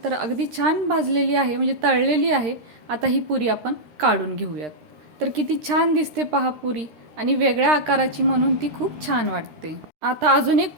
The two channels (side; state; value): left; late; 13 ms